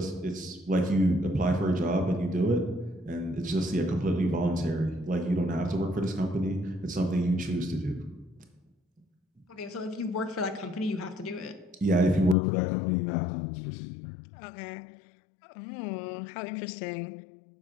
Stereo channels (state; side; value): drops out; right; at 12.4 s